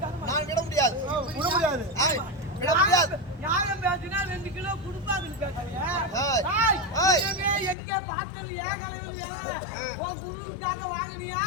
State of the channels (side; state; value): right; drops out; at 7.8 s